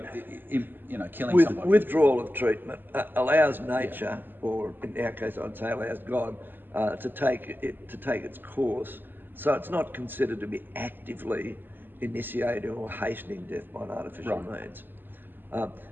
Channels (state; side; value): late; left; 0.093 ms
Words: killing somebody. Withdrawal of treatment allows nature, or in our case, I'd say allows God, to take its course. So it's not considered to be actively initiating or hastening death by an artificial means.